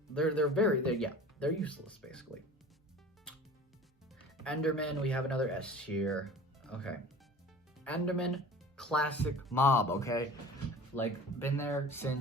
useless basically. Enderman, we have another S tier. Okay. Enderman, classic mob, okay? Like, been there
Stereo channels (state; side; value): normal; both; correlation 0.40